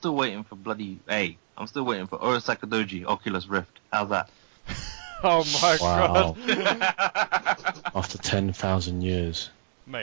waiting for I'm still waiting for Urasaka Doji Oculus Rift. How's that? Oh my Wow. god, After 10,000 years,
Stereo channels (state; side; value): silent; left; digital silence